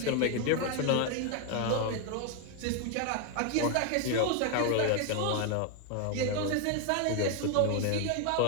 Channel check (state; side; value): different; both; correlation 0.01